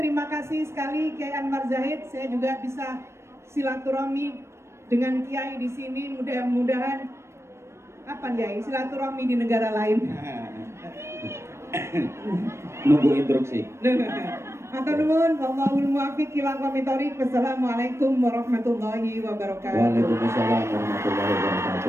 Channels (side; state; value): left; late; 0.13 ms